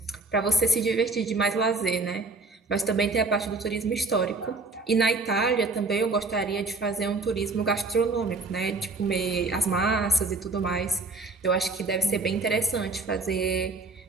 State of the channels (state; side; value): quieter; left; 3.6 dB